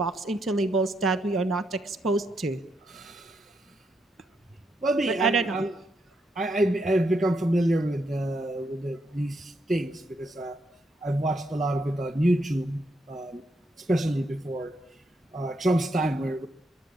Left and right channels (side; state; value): both; normal; correlation 0.79